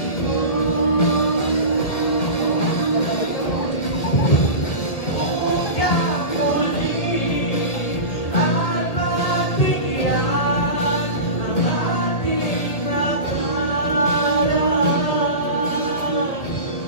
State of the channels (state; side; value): late; right; 2.0 ms